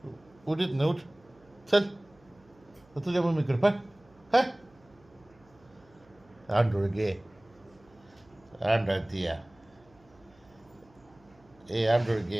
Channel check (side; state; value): right; noise; hum, 29 dB below the sound